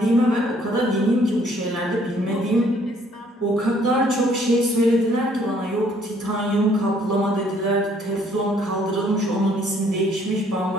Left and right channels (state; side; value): normal; both; correlation 0.63